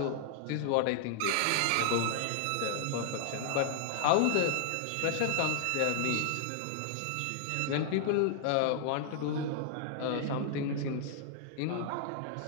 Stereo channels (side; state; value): both; different; correlation -0.01